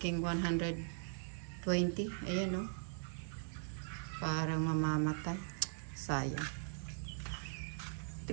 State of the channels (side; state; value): left; silent; digital silence